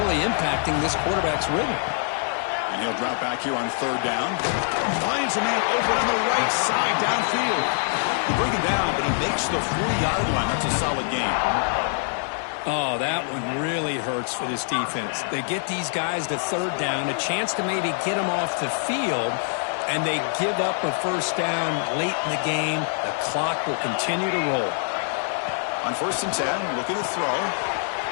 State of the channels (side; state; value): right; silent; 62 dB below the other